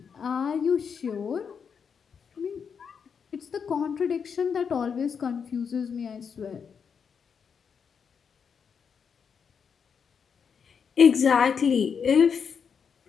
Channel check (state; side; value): quieter; right; 6.6 dB